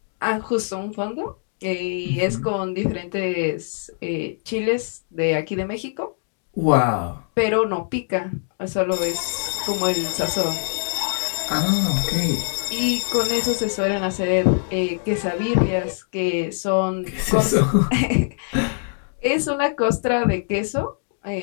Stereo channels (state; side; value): silent; right; digital silence